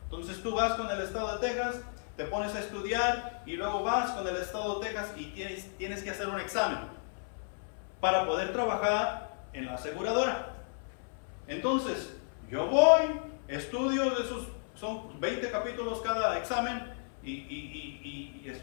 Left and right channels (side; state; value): right; silent; 56 dB below the other